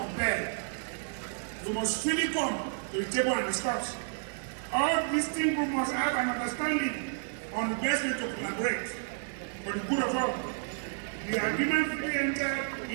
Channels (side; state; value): left; silent; 57 dB below the other